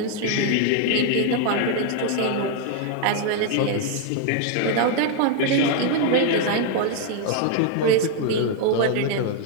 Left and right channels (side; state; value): both; different; correlation 0.00